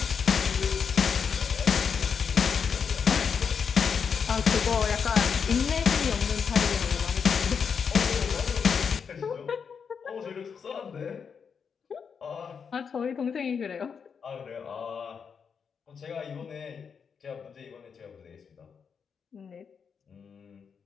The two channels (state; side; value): quieter; right; 6.4 dB